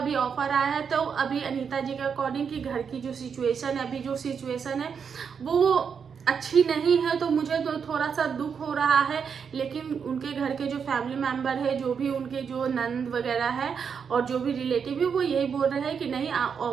ऑफर आया है तो अभी अनीता जी के अकॉर्डिंग कि घर की जो सिचुएशन है, अभी जो सिचुएशन है वो अच्छी नहीं है, तो मुझे तो थोड़ा सा दुख हो रहा है। लेकिन उनके घर के जो फैमिली मेंबर है, जो भी उनके जो नंद वगैरह है और जो भी रिलेटिव है, वो यही बोल रहे हैं कि नहीं,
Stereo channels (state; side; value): quieter; left; 6.6 dB